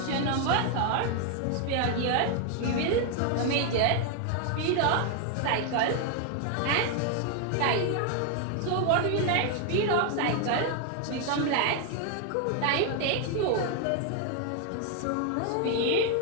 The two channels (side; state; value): both; different; correlation 0.00